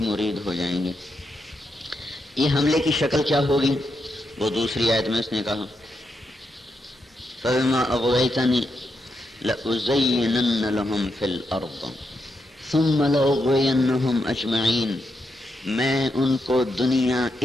مرید ہو جائیں گے. یہ حملے کی شکل کیا ہوگی؟ وہ دوسری آیت میں اس نے کہا فَبِمَا أَغْوَيْتَنِي لَأُزَيِّنَنَّ لَهُمْ فِي الْأَرْضِ ثُمَّ لَأُغْوِيَنَّهُمْ أَجْمَعِينَ. میں ان کو دنیا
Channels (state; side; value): normal; both; correlation 0.83